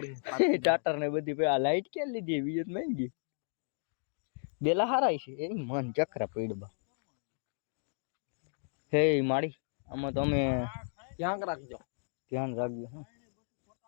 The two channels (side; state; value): right; silent; digital silence